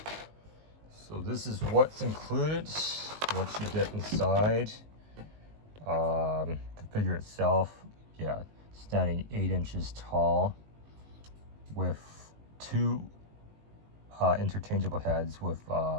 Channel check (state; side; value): late; left; 19 ms